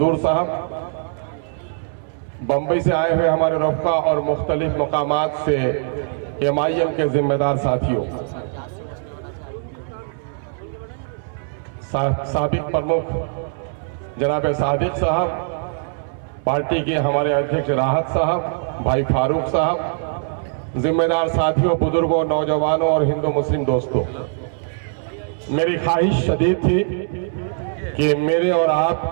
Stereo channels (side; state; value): left; silent; 65 dB below the other